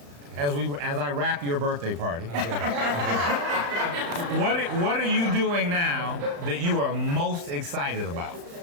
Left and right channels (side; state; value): left; late; 35 ms